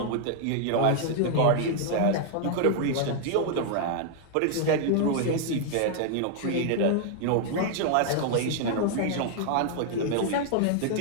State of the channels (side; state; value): both; different; correlation 0.00